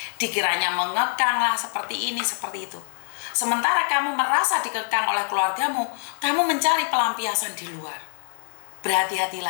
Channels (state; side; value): silent; right; digital silence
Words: Dikiranya mengekang lah, seperti ini, seperti itu. Sementara kamu merasa dikekang oleh keluargamu, kamu mencari pelampiasan di luar.